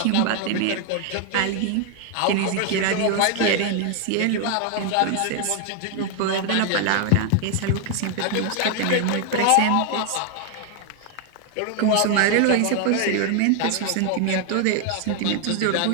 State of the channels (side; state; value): both; different; correlation 0.00